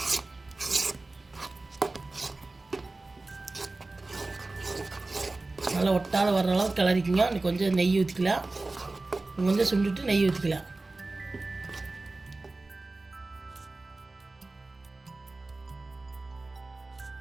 நல்லா ஒட்டாத வர்ற அளவுக்கு கிளறிக்குங்க. இன்னும் கொஞ்சம் நெய் ஊற்றிக்கலாம். கொஞ்சம் சுண்டுட்டு நெய் ஊற்றிக்கலாம்.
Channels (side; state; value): left; quieter; 3.2 dB